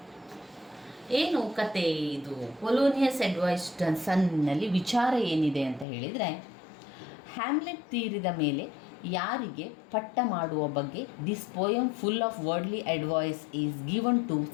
ಏನು ಕತೆ ಇದು? ಪೊಲೋನಿಯಸ್ ಅಡ್ವೈಸ್ ಸನ್ನಲ್ಲಿ ವಿಚಾರ ಏನಿದೆ ಅಂತ ಹೇಳಿದರೆ, ಹ್ಯಾಮ್ಲೆಟ್ ತೀರಿದ ಮೇಲೆ ಯಾರಿಗೆ ಪಟ್ಟ ಮಾಡುವ ಬಗ್ಗೆ this poem full of worldly advice is given to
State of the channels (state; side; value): drops out; right; at 5.9 s